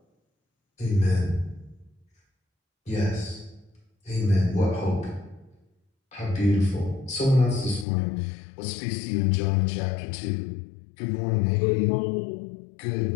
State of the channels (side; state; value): right; drops out; at 7.9 s